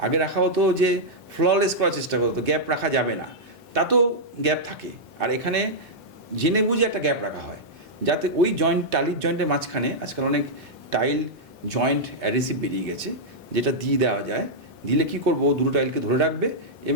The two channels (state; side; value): normal; both; correlation -0.07